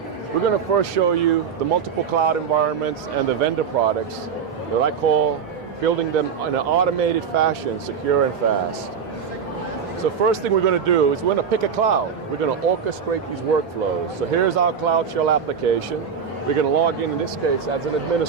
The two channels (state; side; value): quieter; left; 6.7 dB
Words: We're going to first show you the multiple cloud environments and the vendor products that I call building them in an automated fashion, secure and fast. So first thing we're going to do is we're going to pick a cloud. We're going to orchestrate these workflows. So here's our CloudShell application. We're going to log in this case, as an